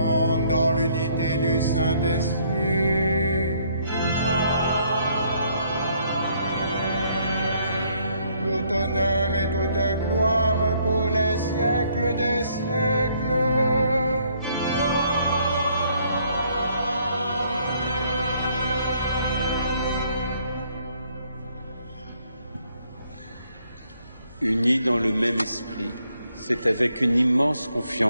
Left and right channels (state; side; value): inverted; both; correlation -0.67